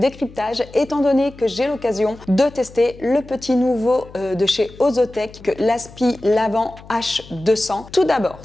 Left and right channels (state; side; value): noise; left; hum, 20 dB below the sound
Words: étant donné que j'ai l'occasion de tester le petit nouveau de chez Ozotech, l'Aspi Lavant H200. Tout d'abord,